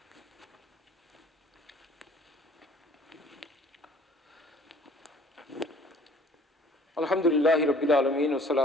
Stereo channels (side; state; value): both; normal; correlation 0.53